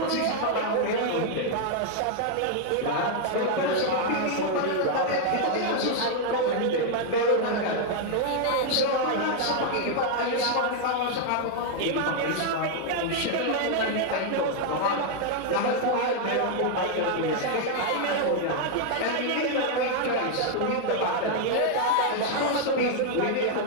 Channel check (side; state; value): both; different; correlation 0.00